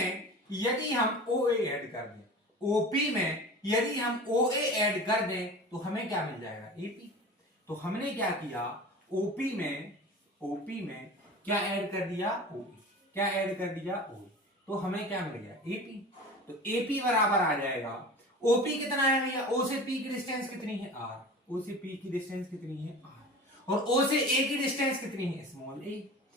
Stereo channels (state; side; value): normal; both; correlation 0.36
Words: यदि हम ओ ए ऐड कर दें, ओपी में यदि हम ओ ए ऐड कर दें तो हमें क्या मिल जाएगा? एपी। तो हमने क्या किया? ओपी में क्या ऐड कर दिया? ओई। क्या ऐड कर दिया? ओई। तो हमें क्या मिल गया? एपी। तो एपी बराबर आ जाएगा, ओपी कितना है भैया? ओ से पी की डिस्टेंस कितनी है? आर। ओ से पी की डिस्टेंस कितनी है? आर। और ओ से ए की डिस्टेंस कितनी है? स्मॉल ए।